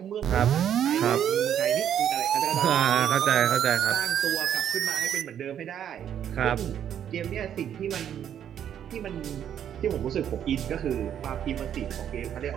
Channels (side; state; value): left; quieter; 9.6 dB